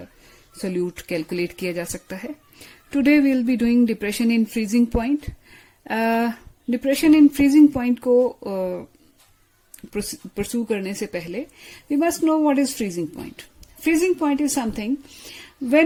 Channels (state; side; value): identical; both; correlation 1.00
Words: solute calculate किया जा सकता है। Today we will be doing depression in freezing point. Depression in freezing point को परस्यू करने से पहले we must know what is freezing point. Freezing point is something